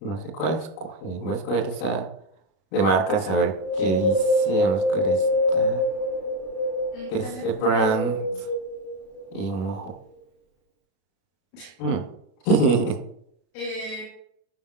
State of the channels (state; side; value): late; right; 36 ms